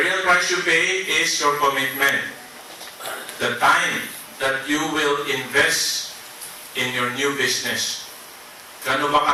real price you pay is your commitment. The time that you will invest in your new business. Gano'n ba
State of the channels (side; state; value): both; identical; correlation 1.00